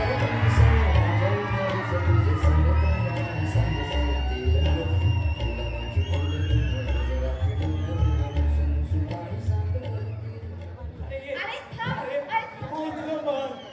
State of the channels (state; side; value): identical; both; correlation 1.00